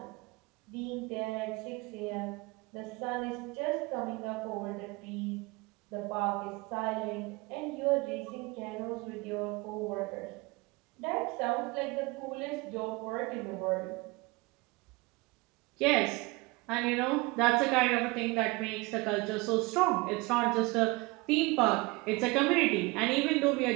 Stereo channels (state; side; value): quieter; left; 24.5 dB